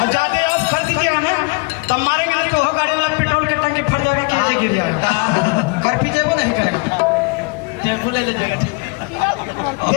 जाते आप खर्च किया ना तब मारेंगे तो हो गाड़ी वाला पेट्रोल के टंकी फट जाएगा कि ऐसे गिर जाएगा। कर पी जाएगा नहीं करेगा ले जाएगा।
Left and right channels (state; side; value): quieter; right; 28.1 dB